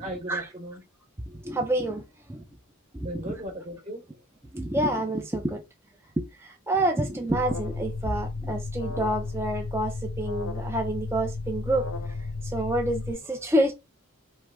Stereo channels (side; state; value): both; normal; correlation 0.60